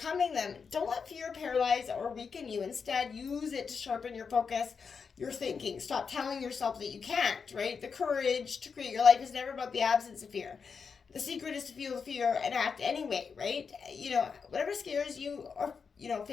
them. Don't let fear paralyze or weaken you. Instead, use it to sharpen your focus, your thinking. Stop telling yourself that you can't, right? The courage to create your life is never about the absence of fear. The secret is to feel the fear and act anyway, right? Whatever scares you, or,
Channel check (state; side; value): quieter; right; 5.7 dB